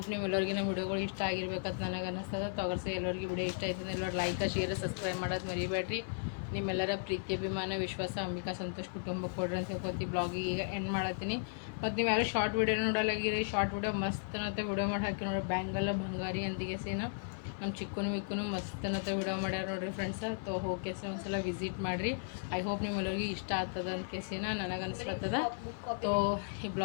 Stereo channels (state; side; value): silent; right; 54 dB below the other